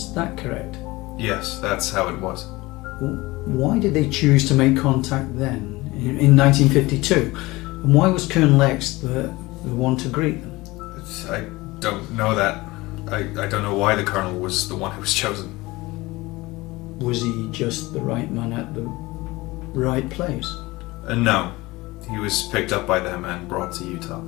that correct? Yes, that's how it was. why did they choose to make contact then, in 1952? And why was Colonel X the one to greet them? I don't know that. I don't know why the Colonel was the one who was chosen. Was he just the right man at the right place? No. He was picked up by them and brought to Utah.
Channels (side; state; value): right; quieter; 20.9 dB